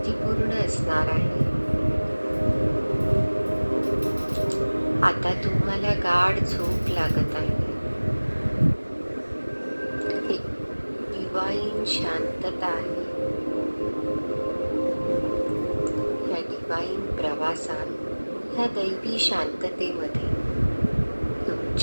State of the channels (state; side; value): inverted; both; correlation -1.00